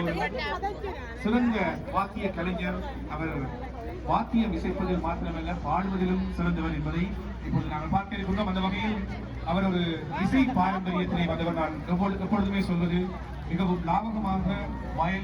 சிறந்த வாக்கிய கலைஞர். அவர் வாக்கியம் இசைப்பதில் மாத்திரமல்ல பாடுவதிலும் சிறந்தவர் என்பதை இப்பொழுது நாங்கள் பார்க்க இருக்கின்றோம். அந்த வகையில் அவர் ஒரு இசை பாரம்பரியத்தினை வந்தவர். நான் எப்பொழுதுமே சொல்வது, மிகவும் லாபகமாக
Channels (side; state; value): both; identical; correlation 1.00